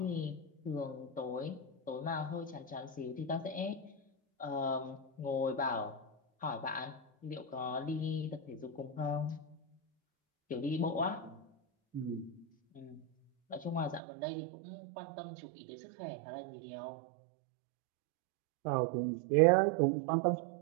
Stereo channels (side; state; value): left; drops out; at 14.0 s